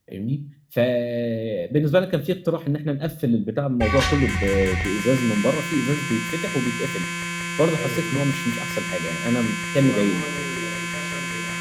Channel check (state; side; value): identical; both; correlation 1.00